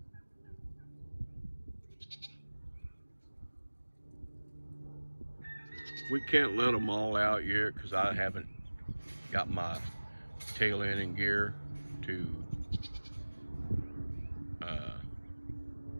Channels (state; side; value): inverted; both; correlation -1.00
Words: We can't let them all out yet because I haven't got my tail end in gear to